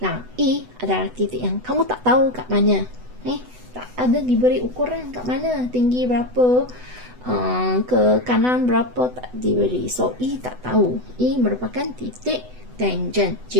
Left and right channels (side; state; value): left; late; 8.0 ms